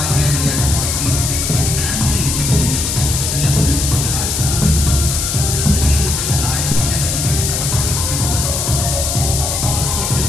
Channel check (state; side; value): noise; left; hiss, 1 dB below the sound